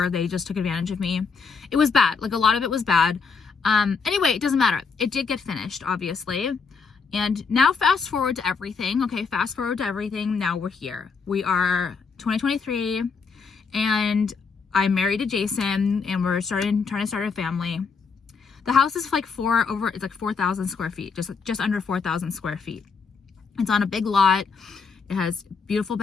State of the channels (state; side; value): quieter; right; 5.3 dB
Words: They just took advantage of me. It was bad. Like a lot of it was bad. Anyway, it doesn't matter. It did get finished, obviously. And now fast forward to everything. Okay, fast forward to everything. Now we're here. We are 2023 and I'm married to Jason and we're trying to start a family. The house is like 4,000 square feet, just under 4,000 square feet. It's on a big lot. It has beautiful